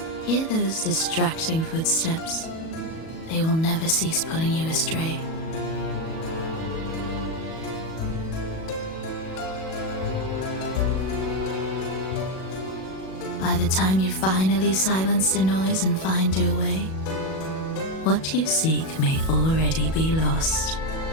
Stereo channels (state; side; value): late; right; 37 ms